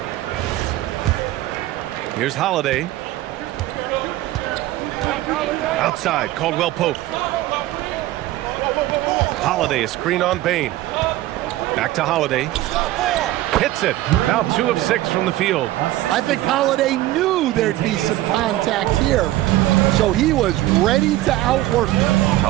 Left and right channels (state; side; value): quieter; left; 15.8 dB